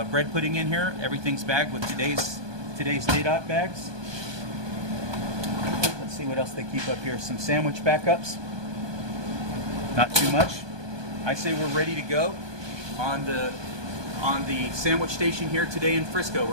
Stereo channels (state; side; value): late; left; 1.2 ms